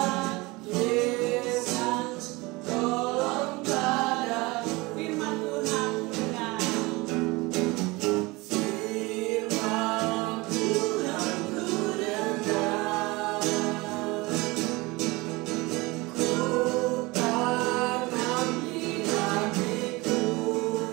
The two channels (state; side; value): quieter; left; 23.3 dB